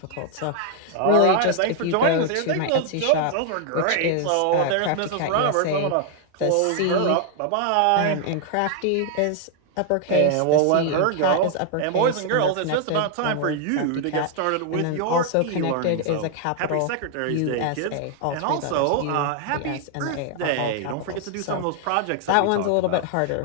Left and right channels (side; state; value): both; different; correlation 0.00